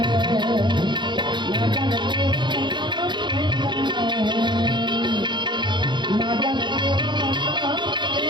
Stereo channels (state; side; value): late; left; 0.22 ms